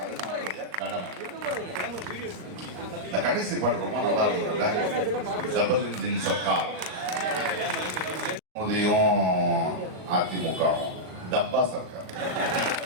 இந்த கடைசி பாட்டு ரொம்ப நல்லா இருக்கு. டபுள் இன்ஜின் சர்க்கார், மோதியும் அதிமுகவும் டப்பா சர்க்கார்.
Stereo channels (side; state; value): left; late; 38 ms